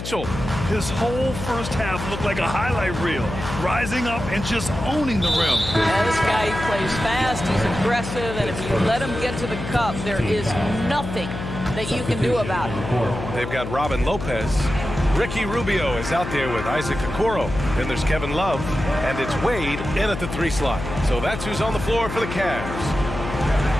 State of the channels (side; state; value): left; noise; hum, 7 dB below the sound